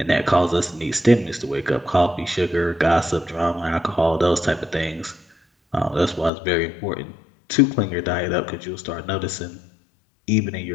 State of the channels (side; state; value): right; drops out; at 6.3 s